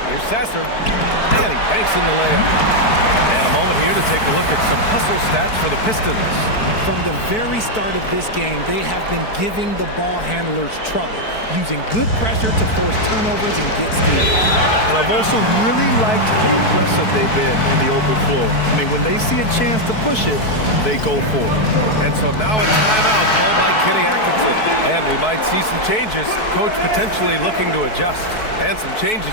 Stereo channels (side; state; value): right; late; 4.6 ms